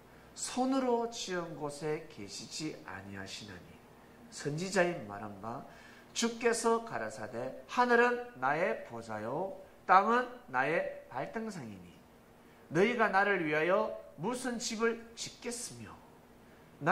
손으로 지은 곳에 계시지 아니하시나니 선지자의 말한 바 주께서 가라사대 하늘은 나의 보좌요 땅은 나의 발등상이니 너희가 나를 위하여 무슨 집을 짓겠으며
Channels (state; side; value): identical; both; correlation 1.00